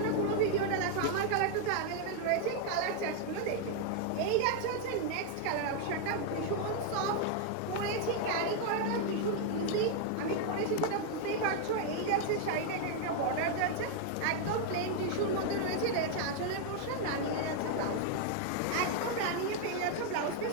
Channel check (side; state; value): both; different; correlation 0.00